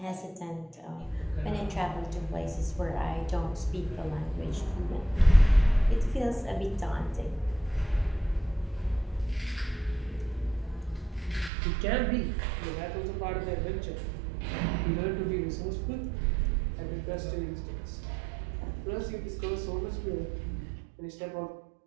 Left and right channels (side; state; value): left; drops out; at 11.5 s